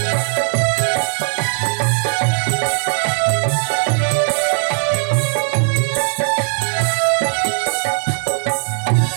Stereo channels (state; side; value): silent; left; 67 dB below the other